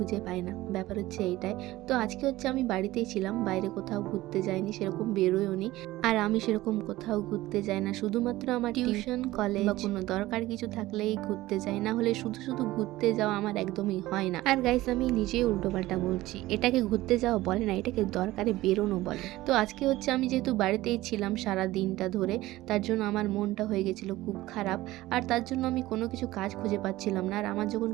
পাই না। ব্যাপার হচ্ছে এইটাই। তো আজকে হচ্ছে আমি বাড়িতেই ছিলাম, বাইরে কোথাও ঘুরতে যাইনি, সেরকম বেরোয়ওনি। আর আমি সেরকম কোথাও ঘুরতে যাই না, শুধুমাত্র আমার টিউশন, কলেজ বা কোনো দরকার কিছু থাকলেই ঘুরতে যাই, না হলে শুধু শুধু ঘুরতে যাওয়া আমার একদমই হয় না। আর গাইস, আমি নিজেই উল্টোপাল্টা বলছি, এটাকে ঘুরতে যাওয়া বলে না, এটাকে দরকারে বেরোনো বলে। তো আজকে হচ্ছে আমি যেহেতু বাড়িতেই ছিলাম সারা দিনটা ধরে, তার জন্য আমার মনটা হয়ে গেছিলো খুব খারাপ। আর তার জন্য আমি কোনো কিছু কাজ খুঁজে পাচ্ছিলাম না। আর আমার যখন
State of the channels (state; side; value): quieter; left; 17.3 dB